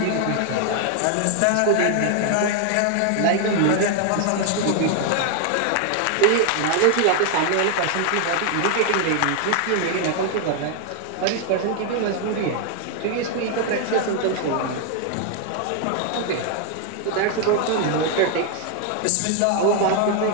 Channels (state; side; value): different; both; correlation 0.00